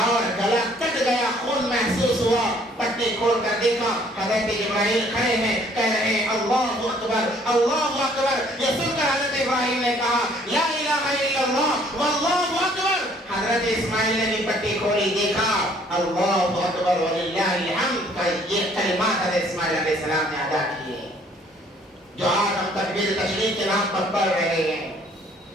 گلا کٹ گیا، خون محسوس ہوا، پٹی کھول کر دیکھا حضرت جبرائیل کھڑے ہیں، کہہ رہے ہیں اللہ اکبر اللہ اکبر۔ یہ سن کر حضرت ابراہیم نے کہا لا الہ الا اللہ واللہ اکبر۔ حضرت اسماعیل نے بھی پٹی کھولی، دیکھا اللہ اکبر وللہ الحمد۔ یہ کلمات حضرت اسماعیل علیہ السلام نے ادا کیے جو آج ہم تکبیر تشریف کے نام پر پڑھ رہے ہیں۔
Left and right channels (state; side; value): normal; both; correlation 0.60